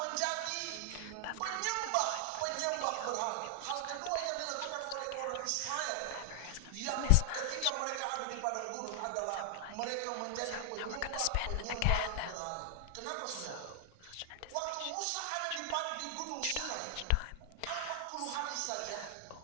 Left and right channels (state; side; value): different; both; correlation 0.00